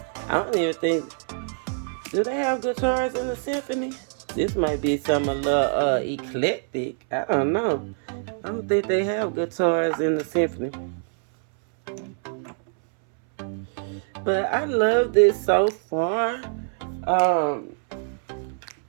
I don't even think, do they have guitars in the symphony? This might be some a little eclectic. I don't know. I don't think they have guitars in the symphony. But I love this so far.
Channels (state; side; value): silent; left; 62 dB below the other